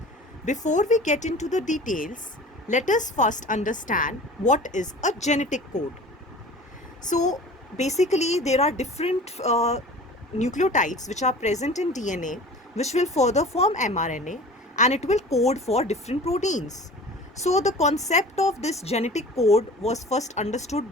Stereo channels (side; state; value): both; normal; correlation 0.41